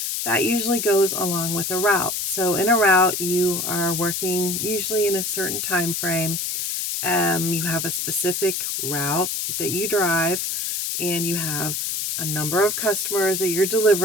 That usually goes along with a route. So, in a route, you are working usually in a certain time frame. You have a specific route that you drive, and you have a number of customers that you're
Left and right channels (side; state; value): left; noise; hiss, 2 dB below the sound